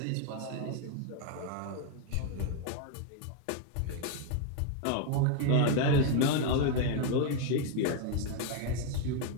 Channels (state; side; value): different; both; correlation 0.00